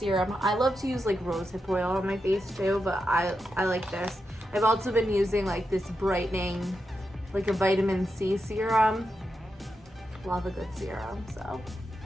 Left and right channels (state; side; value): normal; both; correlation 0.87